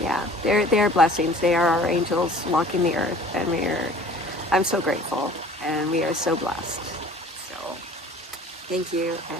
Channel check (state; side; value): normal; both; correlation 0.48